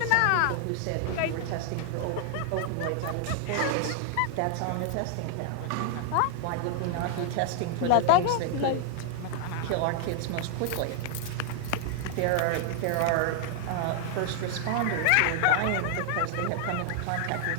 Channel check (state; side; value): different; both; correlation 0.00